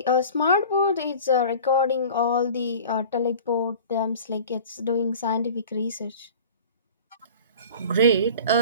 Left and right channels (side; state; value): both; inverted; correlation -0.41